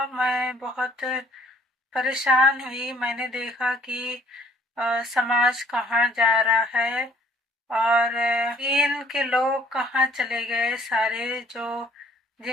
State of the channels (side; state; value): both; normal; correlation 0.59